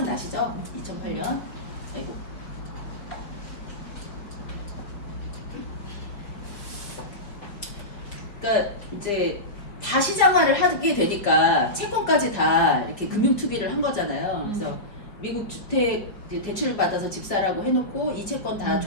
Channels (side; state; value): right; late; 4.7 ms